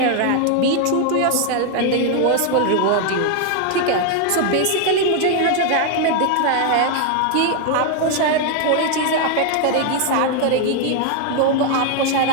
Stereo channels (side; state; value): both; different; correlation 0.01